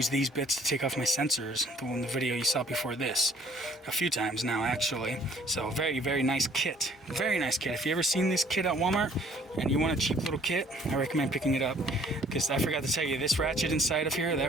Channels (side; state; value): both; normal; correlation 0.57